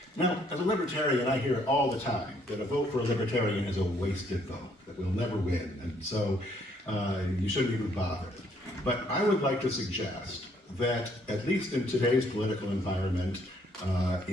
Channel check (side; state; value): both; normal; correlation 0.67